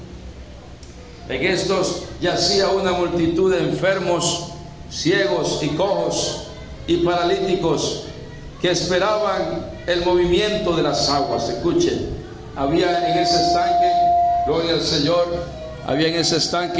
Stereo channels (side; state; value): both; identical; correlation 1.00